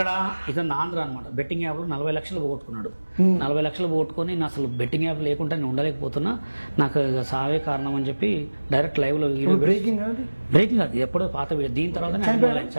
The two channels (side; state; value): both; inverted; correlation -1.00